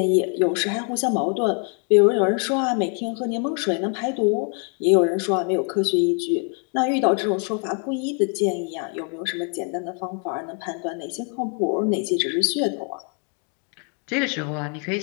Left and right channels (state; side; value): quieter; right; 39.6 dB